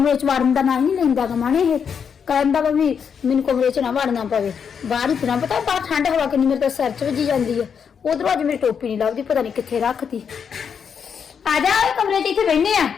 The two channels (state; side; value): quieter; right; 7.0 dB